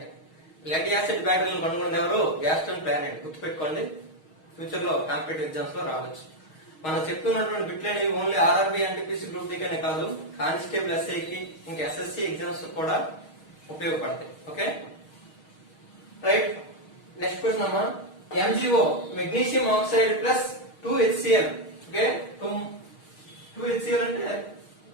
లెడ్ యాసిడ్ బ్యాటరీలను కనుగొన్నది ఎవరు? Gaston Plante. గుర్తుపెట్టుకోండి, ఫ్యూచర్ లో కాంపిటేటివ్ ఎగ్జామ్స్ లో రావచ్చు. మనం చెప్తున్నటువంటి బిట్లు అనేవి only RRB, NTPC, group D కనే కాదు, కానిస్టేబుల్, SIకి, ఇంకా SSC ఎగ్జామ్స్ కూడా ఉపయోగపడతాయి. Okay, right. నెక్స్ట్ క్వశ్చన్ అమ్మా. MgO magnesium oxide plus 2HCl. Okay, 2HCl అంటే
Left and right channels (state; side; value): late; right; 6.4 ms